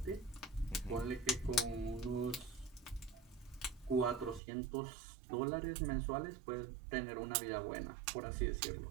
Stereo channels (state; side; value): drops out; left; at 4.4 s